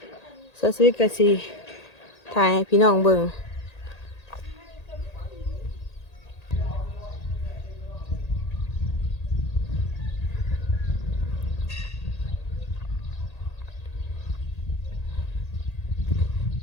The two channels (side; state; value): right; late; 1.8 ms